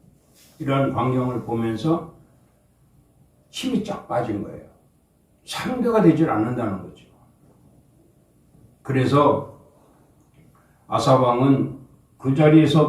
이런 광경을 보면서 힘이 쫙 빠진 거예요. 상대가 되질 않는다는 거죠. 그래서 아사 왕은 그 자리에서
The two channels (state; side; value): identical; both; correlation 1.00